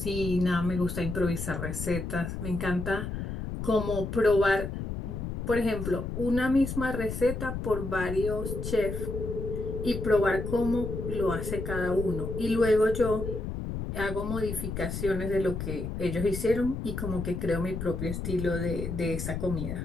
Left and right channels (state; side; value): noise; left; rumble, 5 dB below the sound